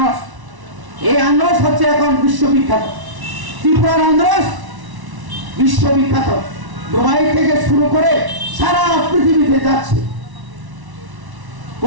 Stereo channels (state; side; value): late; left; 1.1 ms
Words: এই আনারস হচ্ছে এখন বিশ্ববিখ্যাত। ত্রিপুরার আনারস বিশ্ববিখ্যাত। দুবাই থেকে শুরু করে সারা পৃথিবীতে যাচ্ছে।